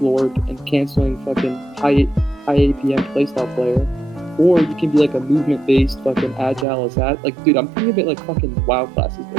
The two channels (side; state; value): left; drops out; at 6.7 s